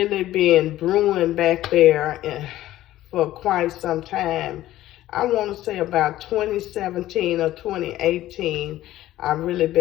been brewing back there for quite some time. I want to say about 2017 or 2018, I've really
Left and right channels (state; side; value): quieter; right; 14.6 dB